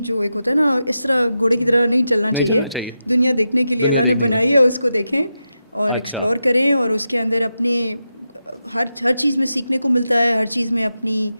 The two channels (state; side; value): inverted; both; correlation -0.89